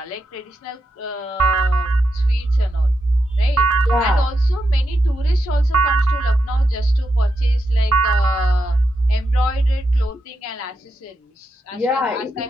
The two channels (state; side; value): normal; both; correlation 0.85